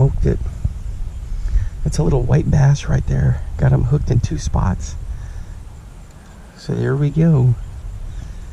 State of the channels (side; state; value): both; identical; correlation 1.00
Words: it. That's a little white bass right there. Got him hooked in 2 spots. So there we go.